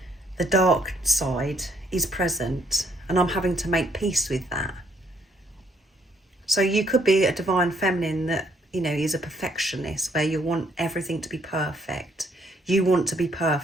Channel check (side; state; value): both; normal; correlation 0.69